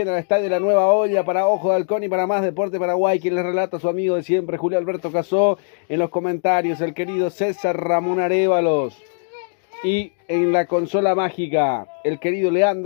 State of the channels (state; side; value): silent; right; 65 dB below the other